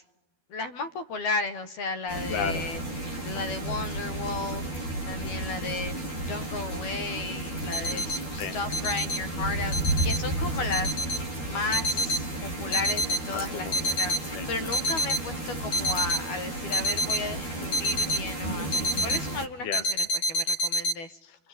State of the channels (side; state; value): right; late; 12 ms